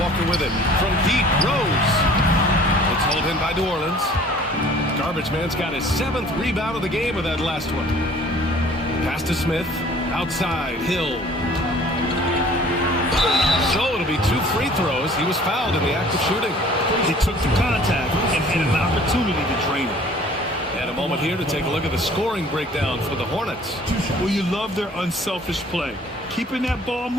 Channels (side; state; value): both; normal; correlation 0.51